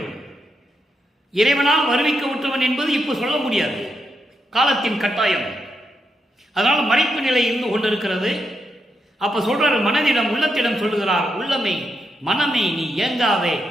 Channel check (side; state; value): both; normal; correlation 0.83